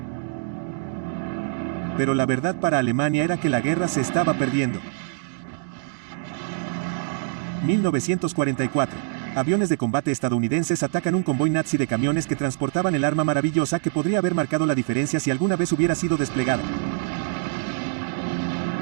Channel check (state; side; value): silent; left; digital silence